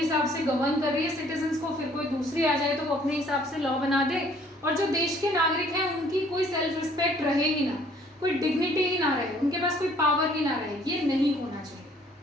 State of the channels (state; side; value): normal; both; correlation 0.59